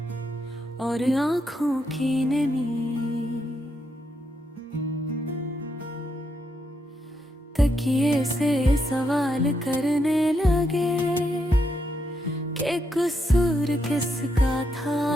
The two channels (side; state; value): both; normal; correlation 0.80